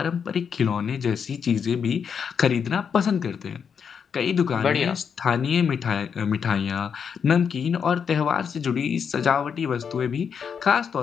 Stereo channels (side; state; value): right; quieter; 6.8 dB